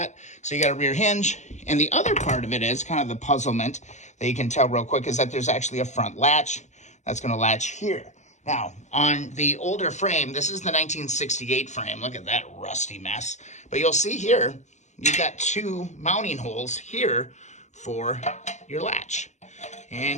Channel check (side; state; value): right; late; 0.34 ms